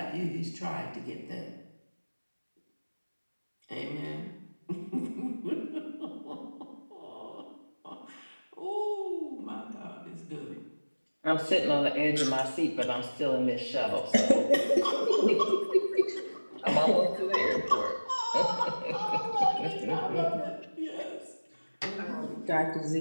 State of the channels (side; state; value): both; inverted; correlation -1.00